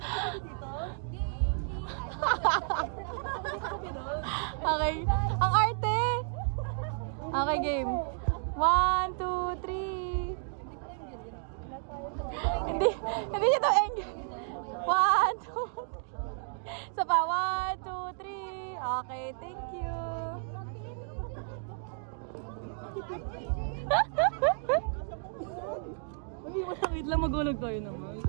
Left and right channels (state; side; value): silent; left; 56 dB below the other